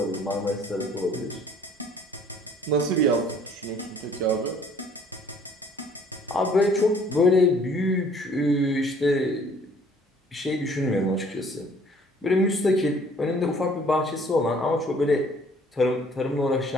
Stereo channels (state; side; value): normal; both; correlation 0.57